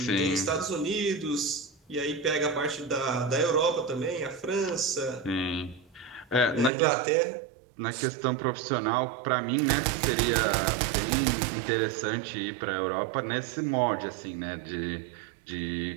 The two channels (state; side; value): drops out; left; at 6.7 s